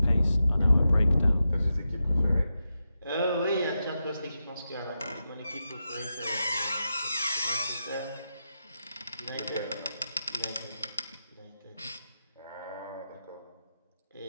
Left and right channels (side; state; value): both; inverted; correlation -0.88